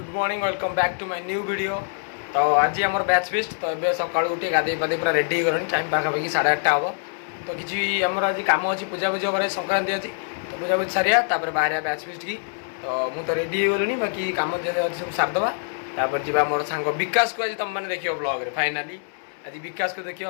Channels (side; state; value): right; silent; digital silence